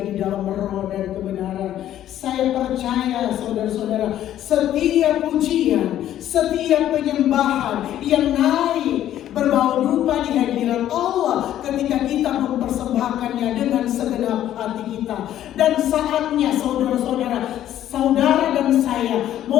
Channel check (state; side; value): quieter; right; 11.9 dB